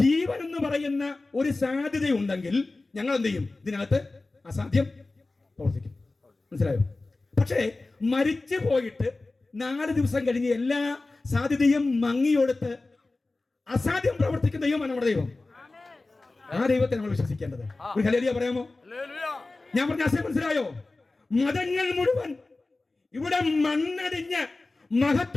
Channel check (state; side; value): quieter; right; 3.3 dB